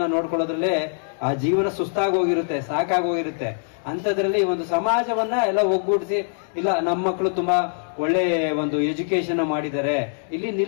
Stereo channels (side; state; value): right; silent; digital silence